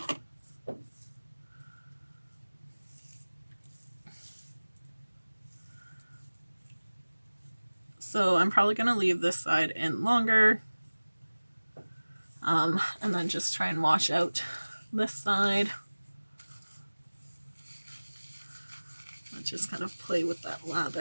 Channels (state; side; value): inverted; both; correlation -1.00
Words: So I'm probably going to leave this side in longer. And then just try and wash out this side. Let's just kind of play with that